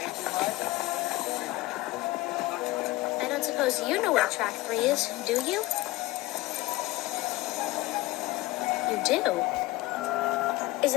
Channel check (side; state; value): right; quieter; 19.1 dB